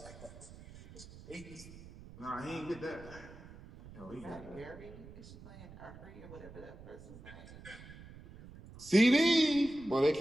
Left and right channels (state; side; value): noise; right; rumble, 17 dB below the sound